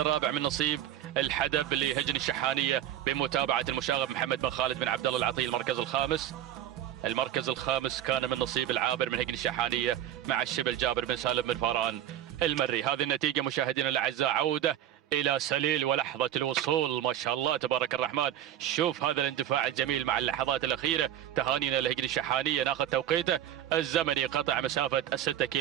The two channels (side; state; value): left; quieter; 11.5 dB